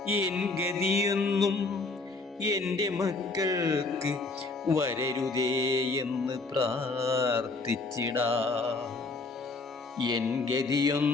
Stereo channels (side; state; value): right; quieter; 3.6 dB